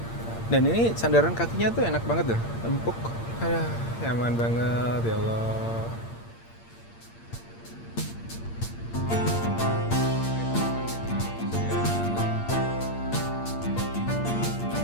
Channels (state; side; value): late; right; 8.7 ms